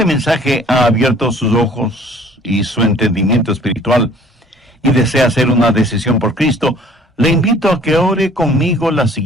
mensaje ha abierto sus ojos y su entendimiento espiritual y desea hacer una decisión por Cristo, le invito a que ore conmigo la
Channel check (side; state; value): both; normal; correlation 0.53